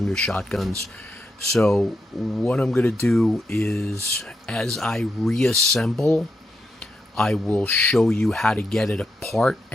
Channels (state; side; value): normal; both; correlation 0.84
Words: shotguns. So what I'm going to do is, as I reassemble, I will show you how to get it apart